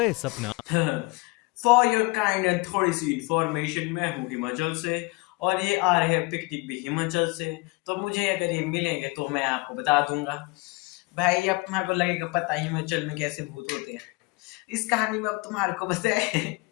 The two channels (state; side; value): quieter; right; 26.0 dB